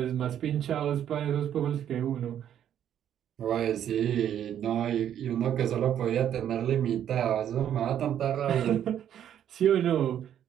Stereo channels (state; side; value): quieter; left; 10.1 dB